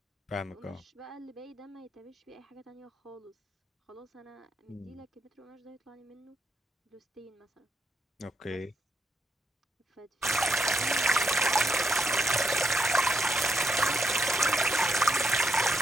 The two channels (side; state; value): both; normal; correlation 0.78